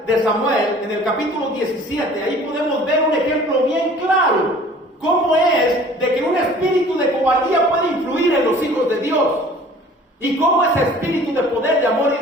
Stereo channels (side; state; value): both; normal; correlation 0.49